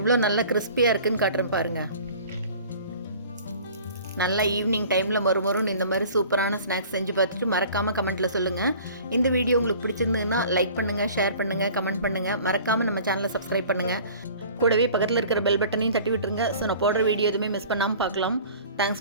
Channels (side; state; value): both; inverted; correlation -0.46